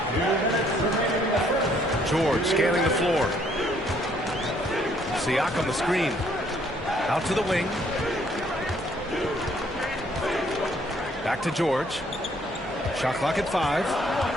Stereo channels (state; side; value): normal; both; correlation 0.65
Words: George scanning the floor. Siakam the screen. Out to the wing. Back to George. Shot clock at 5.